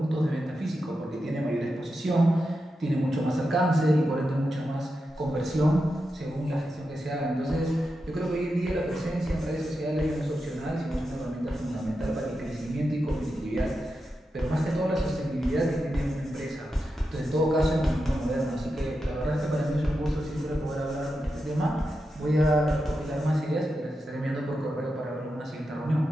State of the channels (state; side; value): normal; both; correlation 0.89